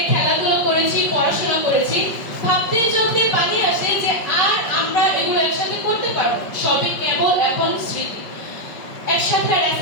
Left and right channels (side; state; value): right; late; 5.3 ms